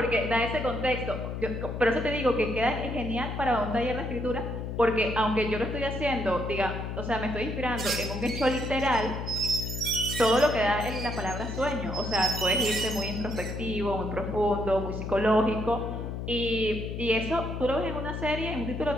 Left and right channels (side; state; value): left; noise; hum, 5 dB below the sound